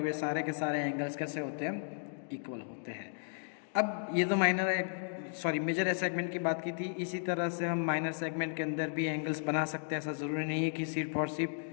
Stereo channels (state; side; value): silent; right; digital silence